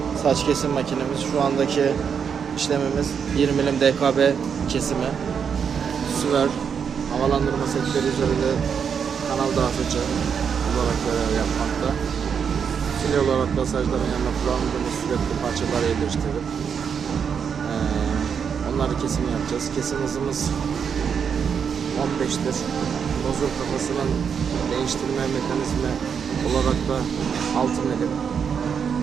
saç kesim makinemiz. Şu andaki işlemimiz 1 milim DKB kesimi. Süver havalandırma setleri üzerinde kanal dağıtıcı olarak görev yapmakta. Fil olarak masajların yanına kullandığımız sürekli parçaları yerleştirip onları kesim yapacağız. Kesim hızımız 15'tir. Nozul kafasının değiştirme mekanizmi olarak da 6 milim.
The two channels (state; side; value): quieter; left; 7.0 dB